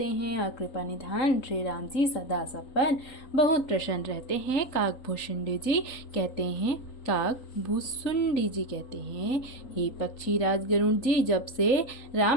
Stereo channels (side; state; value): right; late; 3.8 ms